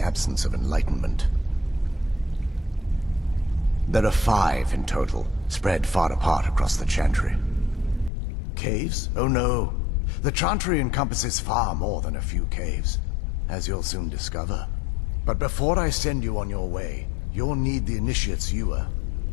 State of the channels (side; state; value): right; drops out; at 8.1 s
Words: of enlightenment. There are 5 in total, spread far apart across the Chantry. Caves? Oh no. The Chantry encompasses far more than a few caves, as you'll soon discover. But before I send you on your way, you'll need the initiate's ewer.